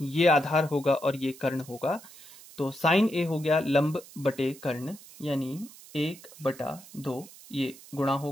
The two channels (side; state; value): right; noise; hiss, 19 dB below the sound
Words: आधार होगा और ये कर्ण होगा। तो sin a हो गया लंब बटे कर्ण यानी 1/2, ये गुणा